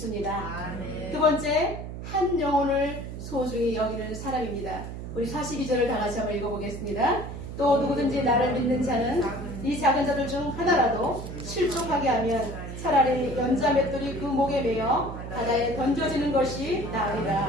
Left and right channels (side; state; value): right; noise; hum, 9 dB below the sound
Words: 아멘. 두 번째, 한 영혼을 소중히 여기는 사람입니다. 우리 42절을 다 같이 한번 읽어보겠습니다. 또 누구든지 나를 믿는 자는 이 작은 자들 중 하나라도 실족하게 하면 차라리 연자 맷돌이 그 목에 매여 바다에 던져지는 것이